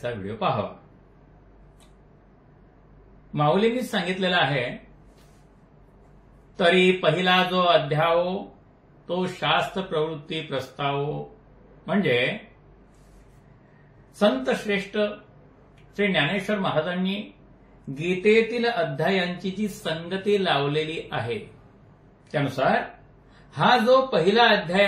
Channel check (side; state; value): both; identical; correlation 1.00